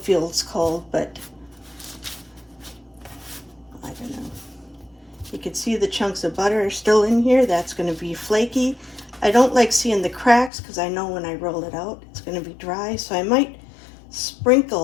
cold, but I don't know. You can see the chunks of butter are still in here. That's going to be flaky. I don't like seeing the cracks because I know when I roll it out it's going to be dry, so I might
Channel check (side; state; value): right; drops out; at 10.5 s